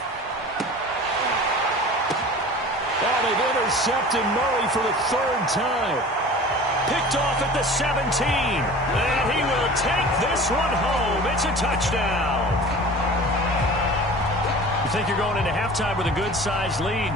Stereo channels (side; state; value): both; normal; correlation 0.40